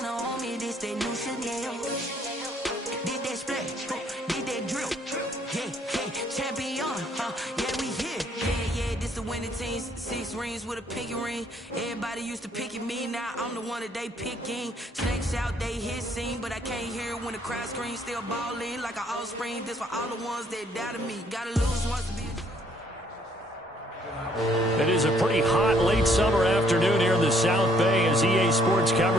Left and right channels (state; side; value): normal; both; correlation 0.65